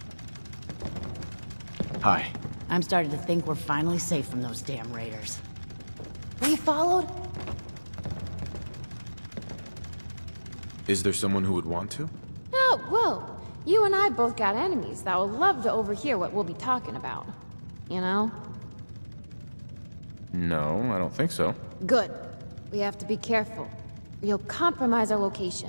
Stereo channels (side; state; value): both; inverted; correlation -1.00